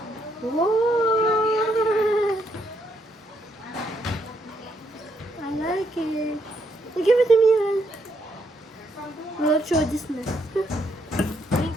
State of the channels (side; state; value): both; normal; correlation 0.75